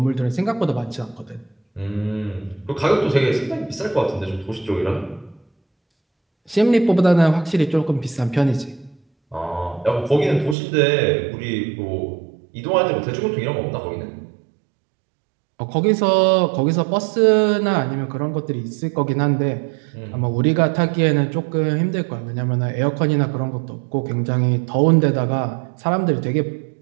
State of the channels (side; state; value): left; drops out; at 10.6 s